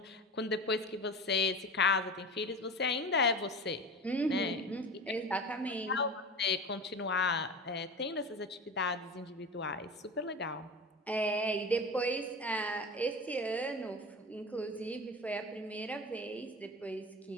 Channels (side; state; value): both; normal; correlation 0.30